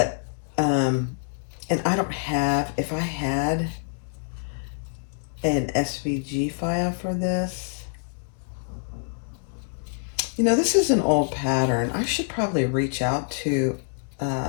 and I don't have, if I had an SVG file for this, you know, this is an old pattern. I should probably reach out to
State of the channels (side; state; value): right; silent; digital silence